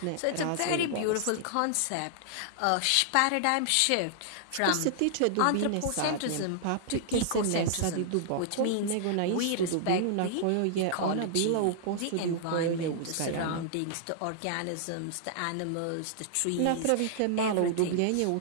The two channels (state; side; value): different; both; correlation -0.01